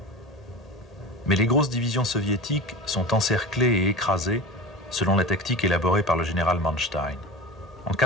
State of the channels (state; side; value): normal; both; correlation 0.31